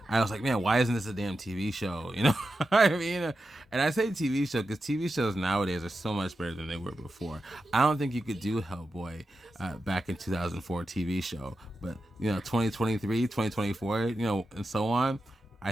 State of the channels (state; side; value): normal; both; correlation 0.90